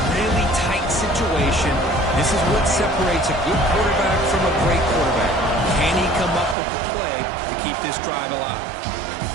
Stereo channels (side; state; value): left; drops out; at 6.6 s